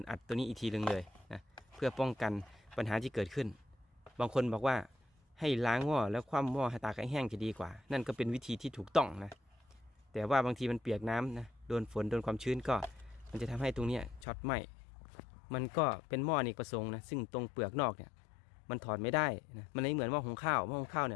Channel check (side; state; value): right; drops out; at 14.2 s